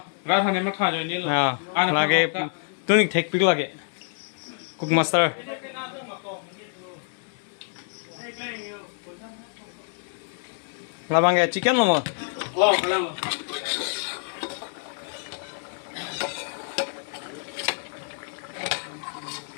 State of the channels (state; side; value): silent; right; 60 dB below the other